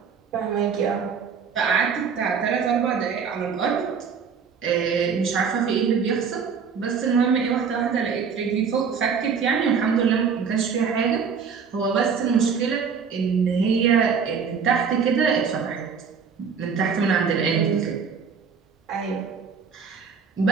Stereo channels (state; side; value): quieter; left; 6.2 dB